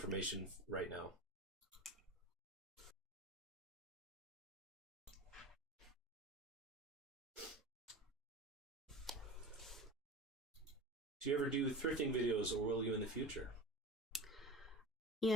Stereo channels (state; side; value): normal; both; correlation 0.31